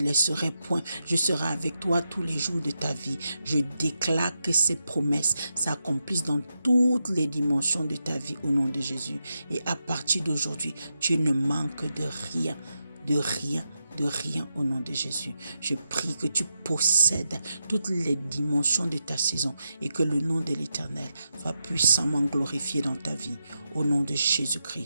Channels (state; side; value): inverted; both; correlation -0.86